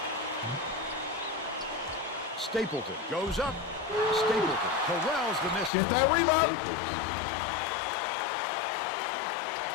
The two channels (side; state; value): right; drops out; at 5.7 s